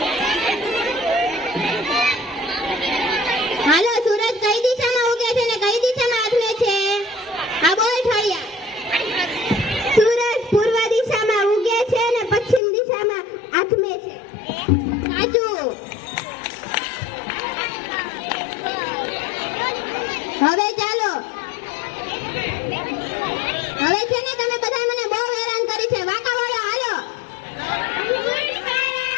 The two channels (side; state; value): right; drops out; at 12.6 s